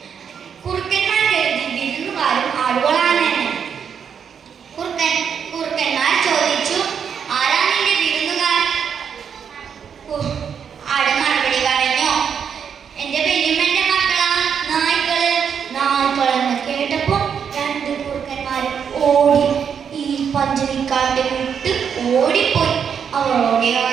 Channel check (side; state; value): left; quieter; 7.4 dB